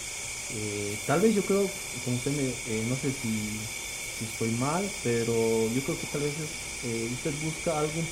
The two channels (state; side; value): identical; both; correlation 1.00